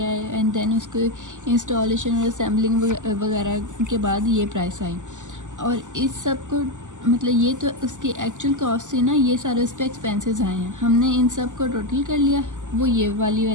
आए, एंड देन उसको इंस्टॉलेशन और असेंबलिंग वगैरह के बाद ये प्राइस आई। और इस सब को मतलब ये तो उसकी एक्चुअल कॉस्ट थी ना, ये सारे उस पर एक्सपेंसेस आए हैं, हमने इन सब को टोटल कर लिया, वो ये वाली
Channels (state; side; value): late; left; 0.86 ms